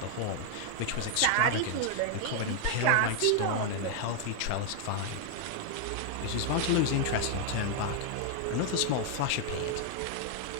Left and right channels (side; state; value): both; different; correlation 0.00